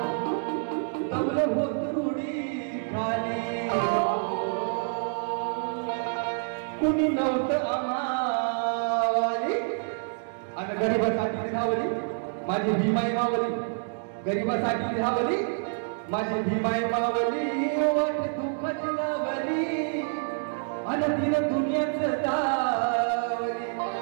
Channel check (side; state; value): left; silent; 60 dB below the other